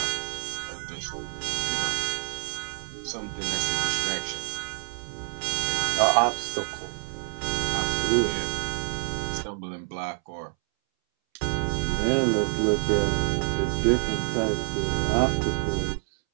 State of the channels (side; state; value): left; silent; 60 dB below the other